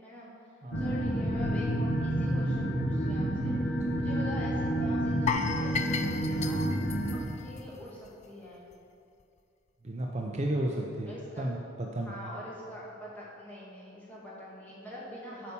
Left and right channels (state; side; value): normal; both; correlation 0.71